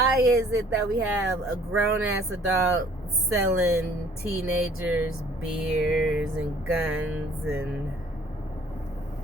is it that we have a grown-ass adult selling teenagers beers and guns? And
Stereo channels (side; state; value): both; normal; correlation 0.56